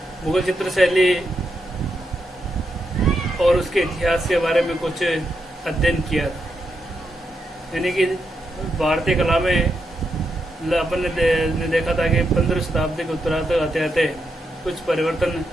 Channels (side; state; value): both; normal; correlation 0.83